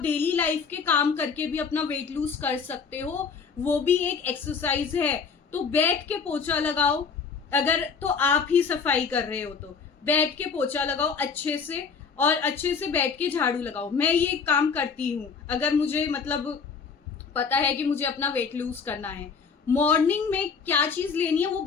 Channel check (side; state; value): right; quieter; 5.6 dB